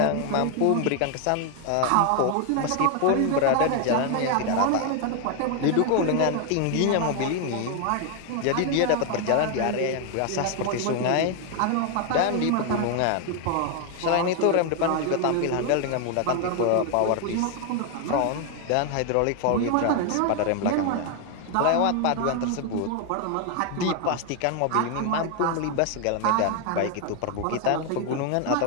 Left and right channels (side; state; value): both; different; correlation 0.00